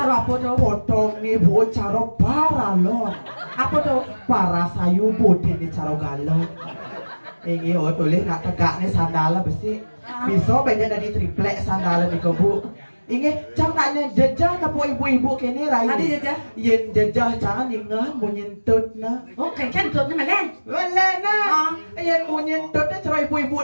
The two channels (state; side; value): inverted; both; correlation -1.00